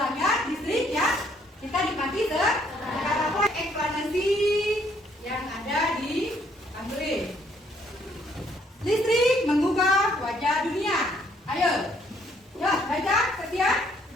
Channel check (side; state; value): both; normal; correlation 0.67